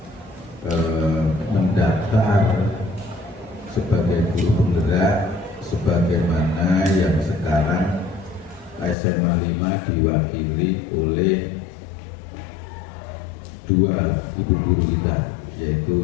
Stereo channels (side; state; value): right; drops out; at 9.0 s